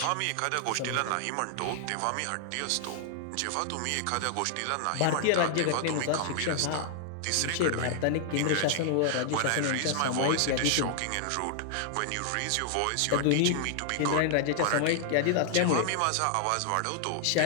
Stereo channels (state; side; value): different; both; correlation -0.01